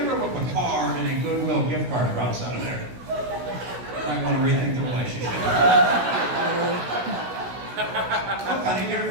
look a card and a Goodwill gift card drops out of there, you might want to rethink the relationship. Look, honey, get her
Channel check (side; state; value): left; late; 16 ms